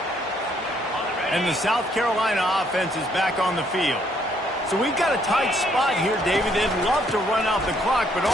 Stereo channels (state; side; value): normal; both; correlation 0.68